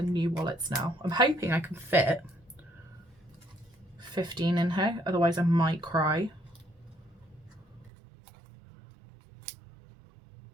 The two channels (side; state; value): left; drops out; at 7.9 s